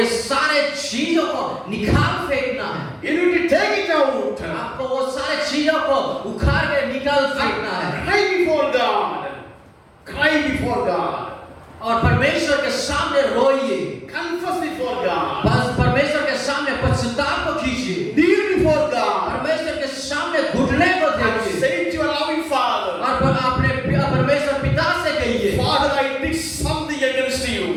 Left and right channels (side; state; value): both; identical; correlation 1.00